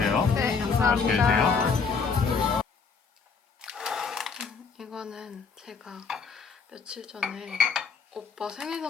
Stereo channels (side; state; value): right; quieter; 5.3 dB